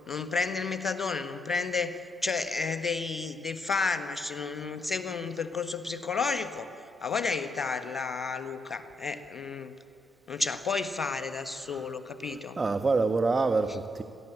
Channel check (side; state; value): both; normal; correlation 0.78